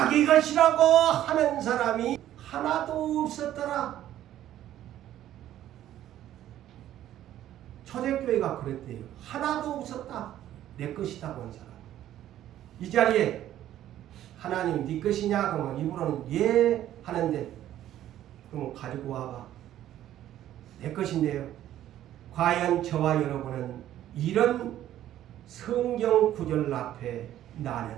것이라고 하는 사람이 하나도 없었더라. 초대교회가 그랬대요. 하나도 없었다. 내 것이다고 한 사람. 이 자리에 하나님 네 것이냐? 그러면 입으로는 예 하는데 그럼 가지고 와봐. 내 것인데요. 과연 저와 여러분은 이런 성경 구절 앞에 나는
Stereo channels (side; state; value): left; quieter; 12.4 dB